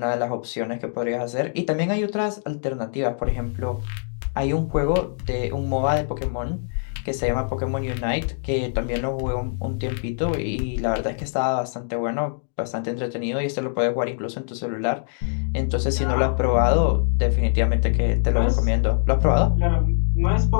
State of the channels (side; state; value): right; silent; digital silence